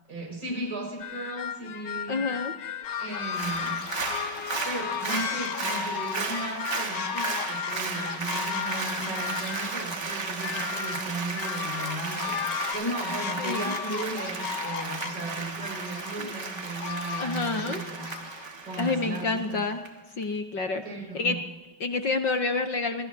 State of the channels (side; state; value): right; late; 5.3 ms